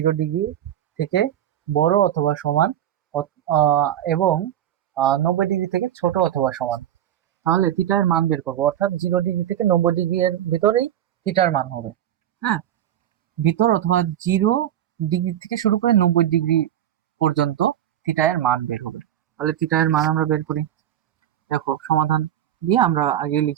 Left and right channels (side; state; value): left; quieter; 11.4 dB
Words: ডিগ্রি থেকে বড় অথবা সমান এবং 90 ডিগ্রি থেকে ছোট অথবা সমান। তাহলে থিটা এর মান বের করবো, অর্থাৎ 0 ডিগ্রি থেকে 90 ডিগ্রি এর ভিতরেই থিটার মান হবে। হ্যাঁ, ভিতর অথবা 0 ডিগ্রি থেকে শুরু করে 90 ডিগ্রি পর্যন্ত থিটা এর মান বের হবে। তাহলে থিটা এর মান আমরা বের করি। দেখো, সমাধান দিয়ে আমরা আগে